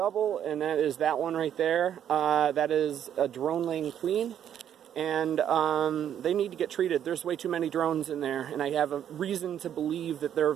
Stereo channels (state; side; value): quieter; left; 9.7 dB